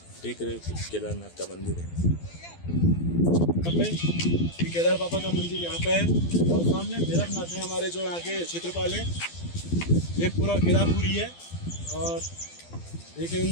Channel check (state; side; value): late; right; 12 ms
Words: देख रहे हो केदारनाथ का मंदिर है यहाँ पे, ये केदार बाबा का मंदिर यहाँ पे है और सामने भैरवनाथ है हमारे जो यहाँ के क्षेत्रपाल है। ये पूरा केदारपुरी है और देखे